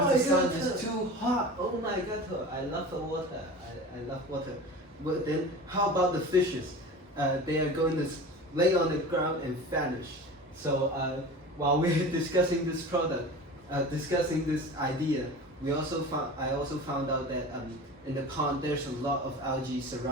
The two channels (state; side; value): normal; both; correlation 0.35